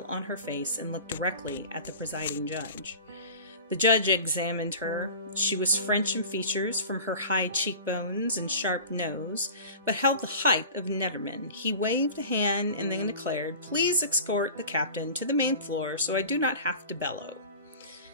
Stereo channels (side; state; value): both; inverted; correlation -0.38